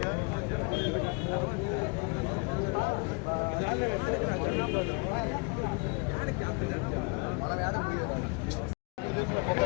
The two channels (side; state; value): right; quieter; 32.6 dB